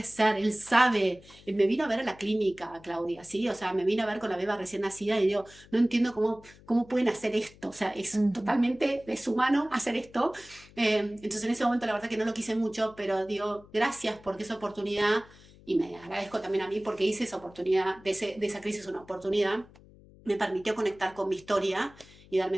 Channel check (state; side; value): noise; left; hum, 24 dB below the sound